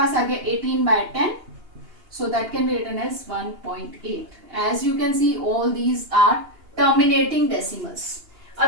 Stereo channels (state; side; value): late; left; 2.8 ms